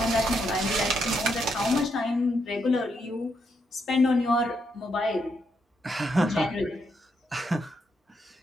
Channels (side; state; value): both; normal; correlation 0.79